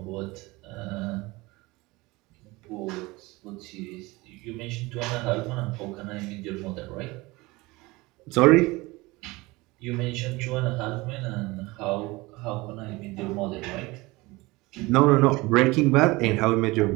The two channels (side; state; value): left; quieter; 22.3 dB